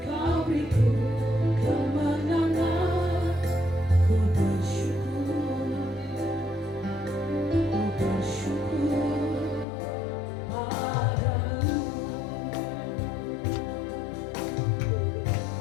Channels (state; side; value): drops out; right; at 9.7 s